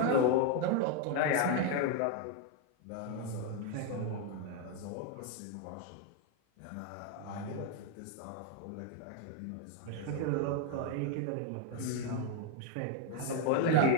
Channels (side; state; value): both; different; correlation 0.01